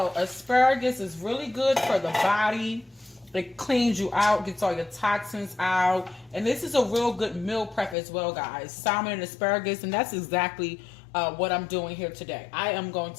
asparagus is really good for the body. It cleans you out, gets all your toxins out. And this is a real good meal prep as well, guys. Salmon and asparagus, and that's exactly what I'm doing here today. I am going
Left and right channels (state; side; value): drops out; right; at 8.0 s